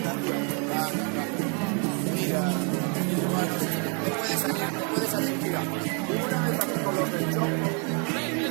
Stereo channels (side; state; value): left; quieter; 37.3 dB